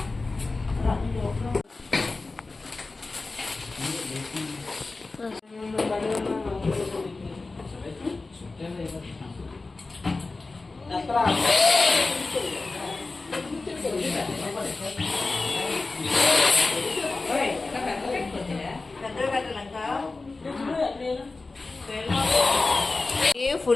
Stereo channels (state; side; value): quieter; right; 3.6 dB